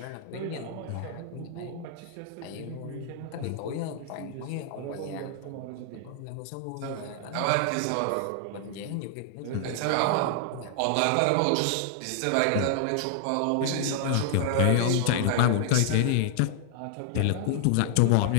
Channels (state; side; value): different; both; correlation 0.00